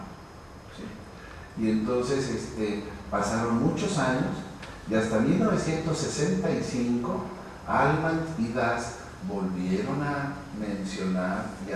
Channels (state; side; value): identical; both; correlation 1.00